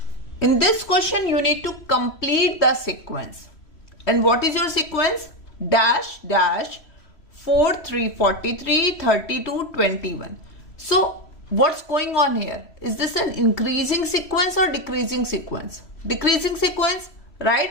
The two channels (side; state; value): right; late; 3.0 ms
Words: In this question you need to complete the sequence. And what is your sequence? Dash, dash, 4, 3, 43, 32, 21. So what's going on here? Is this an increasing sequence or decreasing sequence? Decreasing sequence,